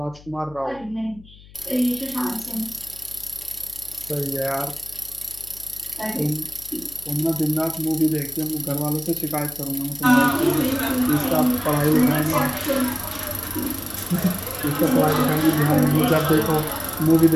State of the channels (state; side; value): noise; left; hum, 22 dB below the sound